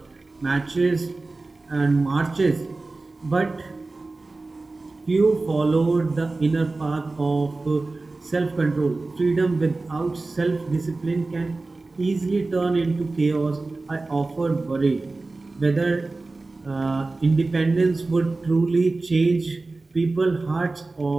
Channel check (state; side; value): quieter; left; 3.4 dB